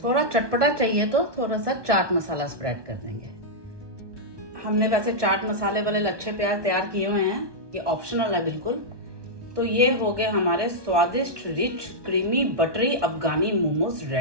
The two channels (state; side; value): late; left; 1.2 ms